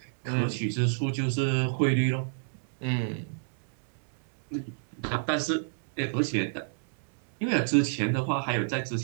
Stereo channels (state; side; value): silent; left; digital silence